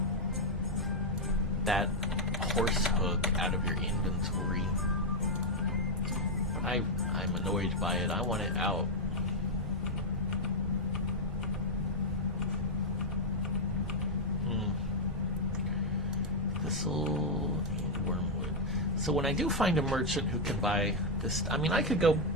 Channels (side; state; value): both; normal; correlation -0.01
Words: that horse hook out of your inventory. I'm annoyed by it. I want it out. Thistle and wormwood. So when I do find a merchant who can buy this, I mean, I could go